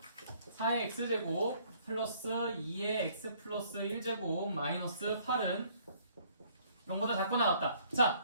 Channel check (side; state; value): both; inverted; correlation -0.61